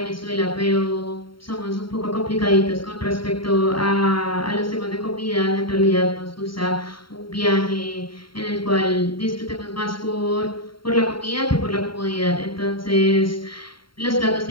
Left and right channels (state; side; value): late; right; 0.73 ms